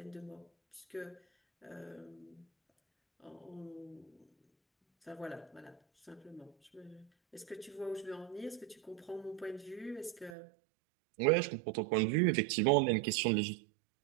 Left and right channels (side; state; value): left; drops out; at 10.4 s